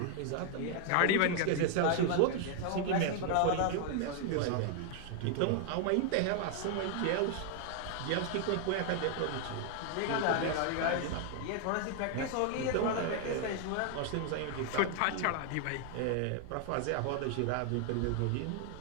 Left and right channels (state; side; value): different; both; correlation 0.00